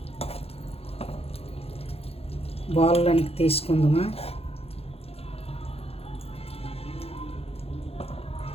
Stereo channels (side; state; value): right; late; 0.29 ms